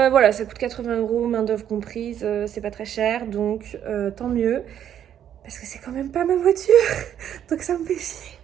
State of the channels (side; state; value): left; quieter; 9.9 dB